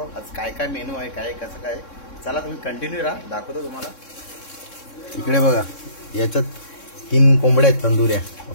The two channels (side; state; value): right; late; 3.6 ms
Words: आज काय काय मेनू आहे, काय कसं काय. चला तुम्ही कंटिन्यू राहा, दाखवतो तुम्हाला. इकडे बघा, याच्यात 3 कोंबड्या आहेत तंदुऱ्या.